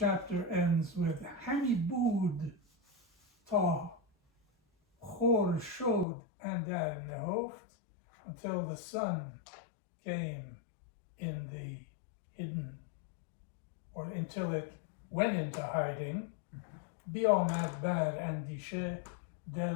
ends with Hamibud ta Chor showed andar nehoft, until the sun came in the hidden, or until it went into hiding. Biomad bar andishe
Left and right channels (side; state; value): right; drops out; at 6.1 s